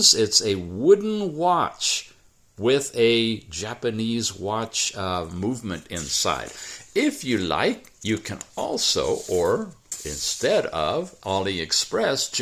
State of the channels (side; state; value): both; identical; correlation 1.00